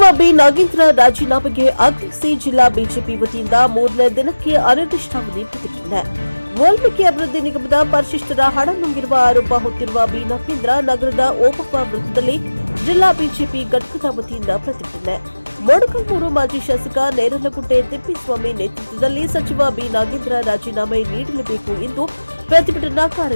ಬಿ ನಾಗೇಂದ್ರ ರಾಜೀನಾಮೆಗೆ ಆಗ್ರಹಿಸಿ ಜಿಲ್ಲಾ ಬಿಜೆಪಿ ವತಿಯಿಂದ ಮೂರನೇ ದಿನಕ್ಕೆ ಅನಿರ್ದಿಷ್ಟಾವಧಿ ಪ್ರತಿಭಟನೆ. ವಾಲ್ಮೀಕಿ ಅಭಿವೃದ್ಧಿ ನಿಗಮದ ಪರಿಶಿಷ್ಟರ ಹಣ ನುಂಗಿರುವ ಆರೋಪ ಹೊತ್ತಿರುವ ಬಿ ನಾಗೇಂದ್ರ ನಗರದ ಓಬವ್ವ ವೃತ್ತದಲ್ಲಿ ಜಿಲ್ಲಾ ಬಿಜೆಪಿ ಘಟಕದ ವತಿಯಿಂದ ಪ್ರತಿಭಟನೆ. ಮೊಳಕಾಲ್ಮೂರು ಮಾಜಿ ಶಾಸಕ ನೇರಲಗುಡ್ಡೆ ತಿಪ್ಪೇಸ್ವಾಮಿ ನೇತೃತ್ವದಲ್ಲಿ ಸಚಿವ ಬಿ ನಾಗೇಂದ್ರ ರಾಜೀನಾಮೆ ನೀಡಲೇಬೇಕು ಎಂದು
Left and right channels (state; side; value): inverted; both; correlation -1.00